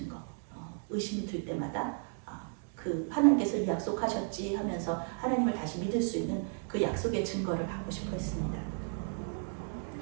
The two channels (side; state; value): left; silent; 55 dB below the other